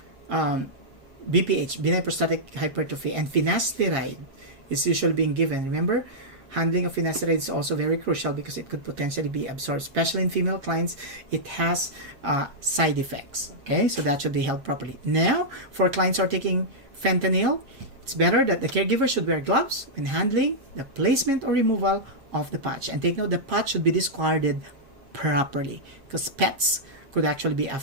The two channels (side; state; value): left; late; 7.4 ms